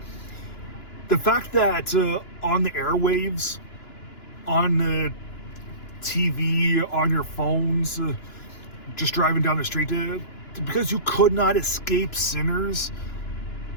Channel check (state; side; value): late; right; 2.9 ms